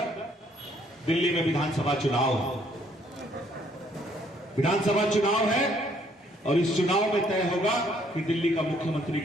दिल्ली में विधानसभा चुनाव है। विधानसभा चुनाव है और इस चुनाव में तय होगा कि दिल्ली का मुख्यमंत्री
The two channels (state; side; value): normal; both; correlation 0.65